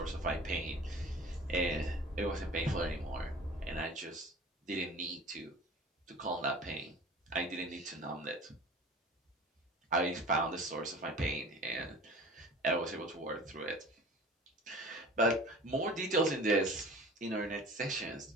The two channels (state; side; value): normal; both; correlation 0.41